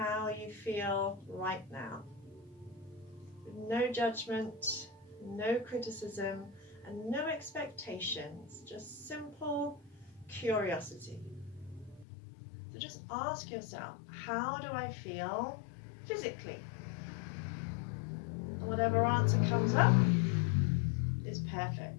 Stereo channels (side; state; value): right; drops out; at 12.1 s